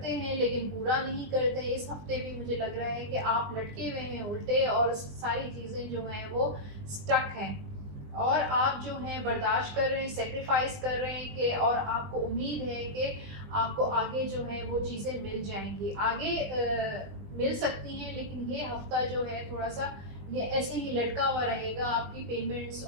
हैं लेकिन पूरा नहीं करते। इस हफ्ते भी मुझे लग रहा है कि आप लटके हुए हैं उल्टे और सारी चीज़ें जो हैं वो स्टक हैं और आप जो हैं बर्दाश्त कर रहे हैं, सेक्रीफाइस कर रहे हैं कि और आपको उम्मीद है कि आपको आगे जो है वो चीज़ें मिल जाएँगी। आगे मिल सकती हैं लेकिन ये हफ़्ता जो है थोड़ा-सा ये ऐसे ही लटका हुआ रहेगा। आपकी पेमेंट्स,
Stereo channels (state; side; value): late; left; 20 ms